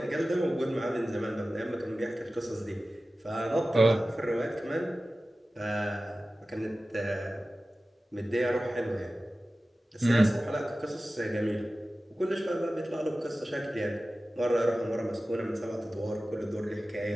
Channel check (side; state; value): both; normal; correlation 0.95